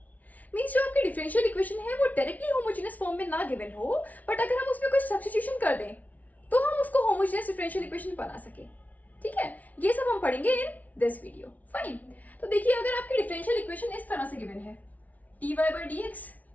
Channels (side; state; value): right; late; 0.073 ms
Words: Means जो आपकी differential equation है वो directly homogeneous form में ना given हो but अगर हम उसमें कुछ substitution कर दें तो हम उसको homogeneous differential equation बना सके. ठीक है, ये सब हम पढ़ेंगे in this video. Fine. तो देखिए अगर आपकी differential equation इस तरह से given है dy by dx